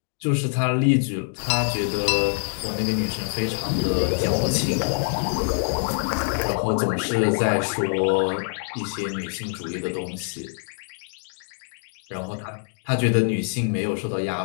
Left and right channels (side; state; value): right; silent; 62 dB below the other